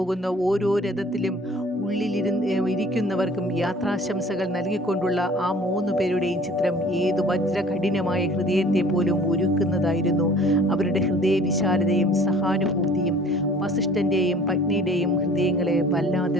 ഓരോ രഥത്തിലും ഇരിക്കുന്നവർക്കും യാത്രാശംസകൾ നൽകിക്കൊണ്ടുള്ള ആ 3 പേരുടെയും ചിത്രം ഏതു വജ്രകഠിനമായ ഹൃദയത്തെ പോലും ഒരുക്കുന്നതായിരുന്നു. അവരുടെ ഹൃദയവിശാലതയും സഹാനുഭൂതിയും വസിഷ്ഠൻ്റെയും പത്നിയുടെയും ഹൃദയങ്ങളെ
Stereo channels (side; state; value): both; normal; correlation 0.50